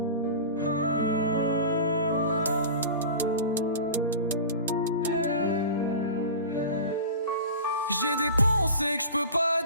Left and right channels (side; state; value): both; inverted; correlation -0.34